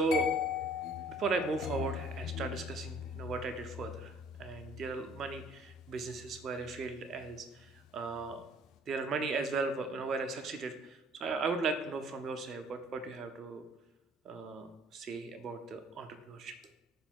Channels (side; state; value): both; normal; correlation 0.55